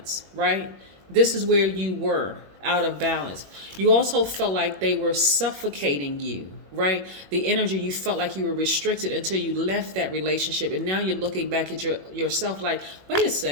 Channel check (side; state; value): left; late; 21 ms